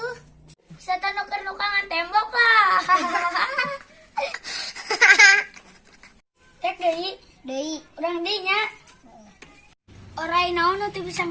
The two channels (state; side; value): identical; both; correlation 1.00